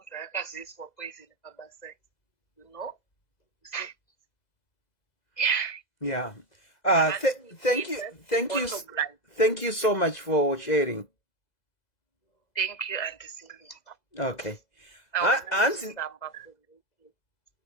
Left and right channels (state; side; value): late; right; 2.0 ms